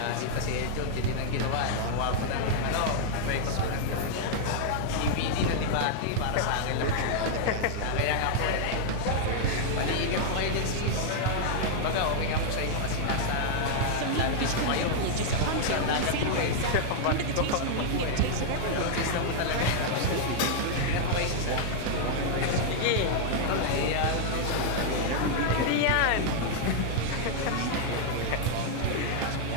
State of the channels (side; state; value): both; different; correlation -0.01